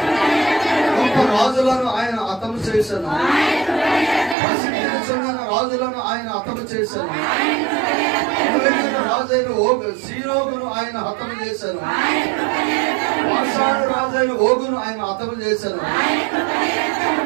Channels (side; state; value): left; drops out; at 4.4 s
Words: గొప్ప రాజులను ఆయన హతము చేశాను. ప్రసిద్ధిని చెందిన రాజులను ఆయన హతము చేశాను. రాజైన సీరోగును ఆయన హతము చేశాను. బాషాను రాజైన ఓగును ఆయన హతము చేశాను.